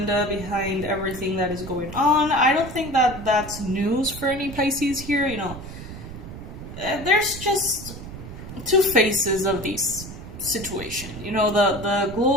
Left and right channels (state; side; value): noise; right; rumble, 11 dB below the sound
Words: behind everything that is going on. I don't think that that's news for any Pisces here, There's just two faces of this situation. The